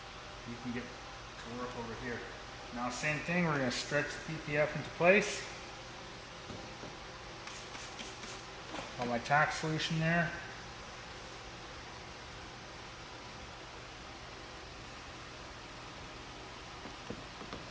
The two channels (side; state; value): both; identical; correlation 1.00